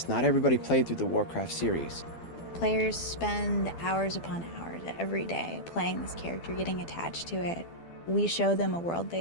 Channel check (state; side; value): late; right; 12 ms